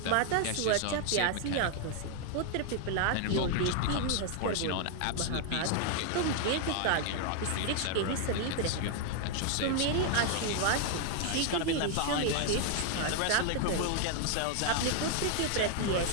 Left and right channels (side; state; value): both; different; correlation 0.00